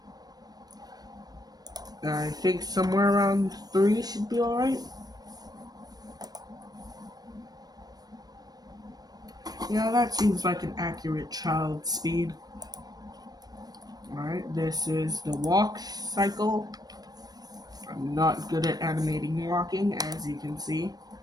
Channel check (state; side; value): late; left; 0.19 ms